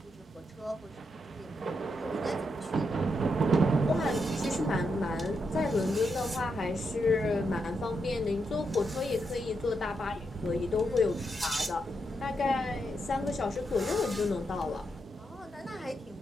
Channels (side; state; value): both; normal; correlation 0.82